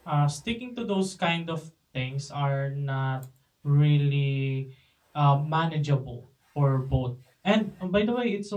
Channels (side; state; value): both; identical; correlation 1.00